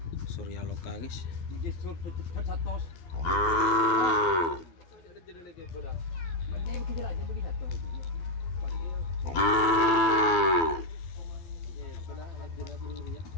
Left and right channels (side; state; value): right; late; 12 ms